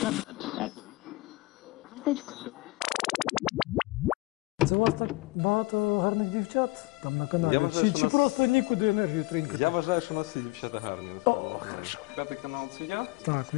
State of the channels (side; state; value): right; quieter; 22.7 dB